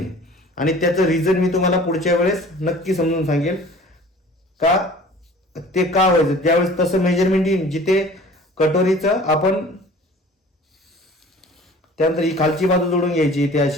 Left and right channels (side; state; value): both; normal; correlation 0.47